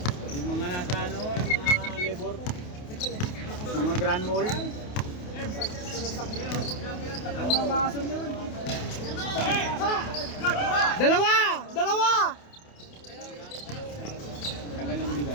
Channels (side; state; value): right; late; 28 ms